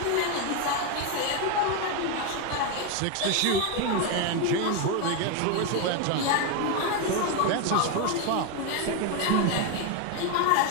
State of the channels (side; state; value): both; different; correlation 0.02